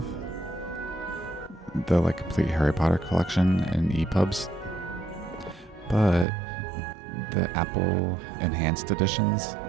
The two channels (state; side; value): drops out; left; at 6.2 s